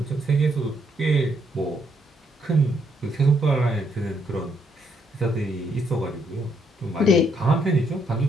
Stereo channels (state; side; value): normal; both; correlation 0.73